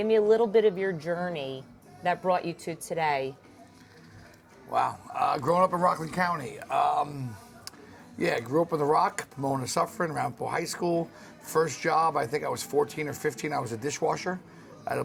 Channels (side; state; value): both; identical; correlation 1.00